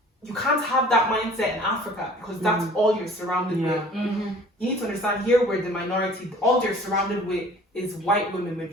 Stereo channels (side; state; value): both; normal; correlation 0.49